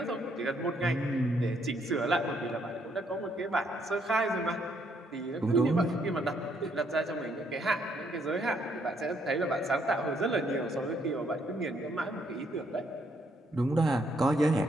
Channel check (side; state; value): both; normal; correlation 0.71